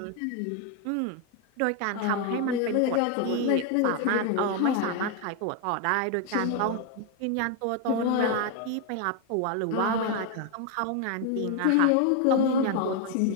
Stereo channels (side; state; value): both; different; correlation 0.01